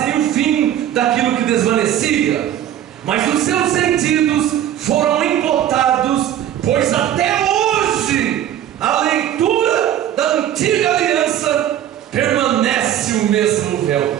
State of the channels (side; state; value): left; quieter; 11.2 dB